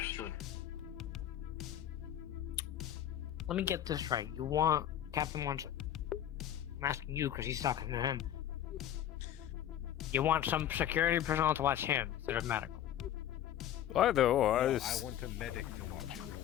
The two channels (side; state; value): right; quieter; 11.1 dB